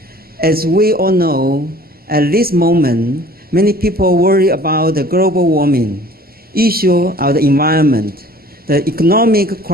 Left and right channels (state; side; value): normal; both; correlation 0.50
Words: As we all know, at this moment, many people worry about the global warming, issue of the environment, the economic